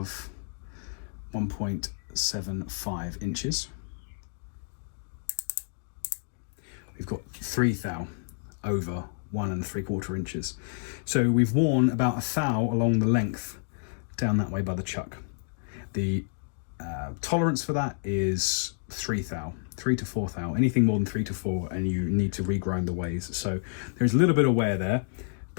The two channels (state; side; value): silent; right; digital silence